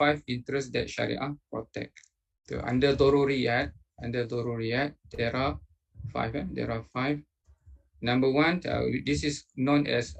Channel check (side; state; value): both; identical; correlation 1.00